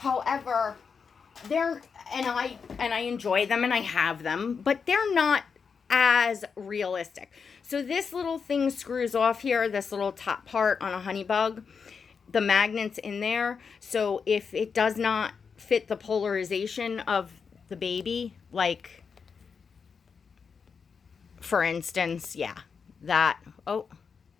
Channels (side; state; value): right; quieter; 5.8 dB